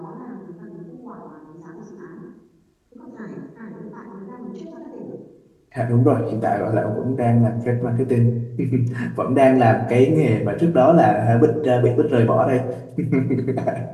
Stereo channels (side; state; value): both; identical; correlation 1.00